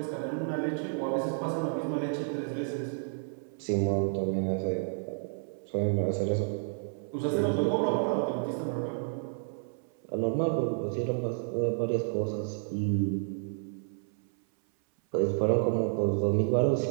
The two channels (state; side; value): silent; left; 57 dB below the other